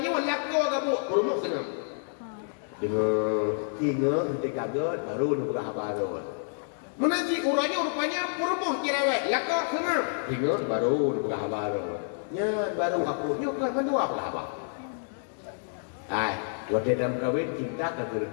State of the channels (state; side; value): silent; right; digital silence